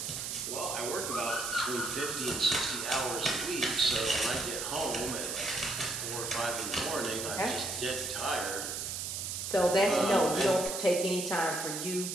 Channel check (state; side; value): noise; right; hiss, 4 dB below the sound